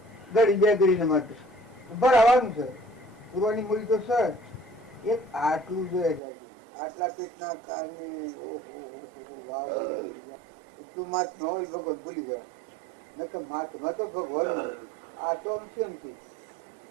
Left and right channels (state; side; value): drops out; left; at 6.2 s